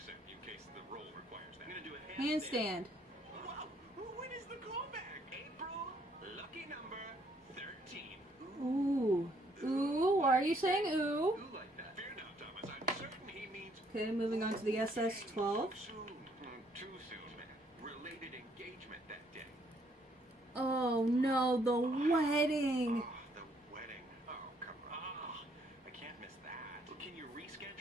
in case the role requires that. I'm gonna do a Handstand. Wow. When is the callback? April. Lucky number 13. Ooh. Ooh. Why are you saying ooh? Who like that? Fear not, Thomas. I'm certain he means Okay, moving on to the SS-12. too soon. Too soon, man. Related engagement that day. Oh no, the wedding. Oh, the wedding. Oh, come on. I can't miss that. Well, can you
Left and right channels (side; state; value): both; normal; correlation 0.68